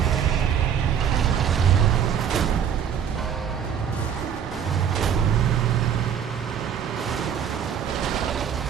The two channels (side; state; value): left; quieter; 8.3 dB